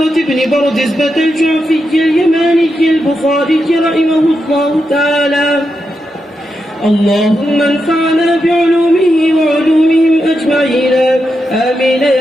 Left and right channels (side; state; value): both; normal; correlation 0.86